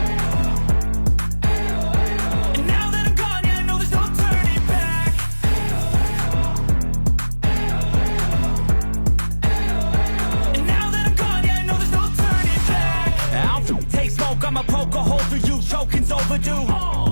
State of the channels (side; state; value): both; inverted; correlation -1.00